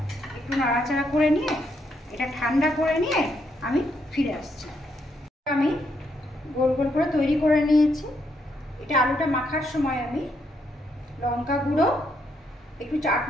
একটু নাড়াচাড়া করে নিয়ে এটা ঠান্ডা করে নিয়ে আমি ফিরে আসছি। আমি গোল গোল করে তৈরি করে নিয়েছি। এটা আলুটা মাখার সময় আমি লঙ্কা গুঁড়ো, একটু চাট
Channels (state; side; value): normal; both; correlation 0.76